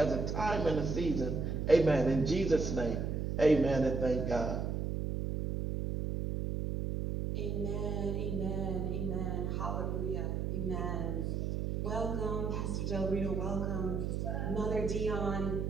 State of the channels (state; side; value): noise; right; hum, 1 dB below the sound